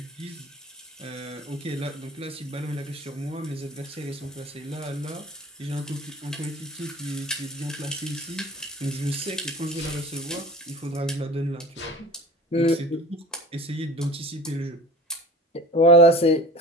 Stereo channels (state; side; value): normal; both; correlation 0.38